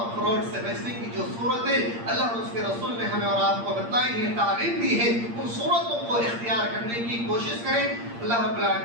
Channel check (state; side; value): late; left; 8.6 ms